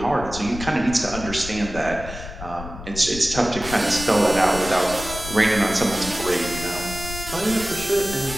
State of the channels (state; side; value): noise; left; rumble, 11 dB below the sound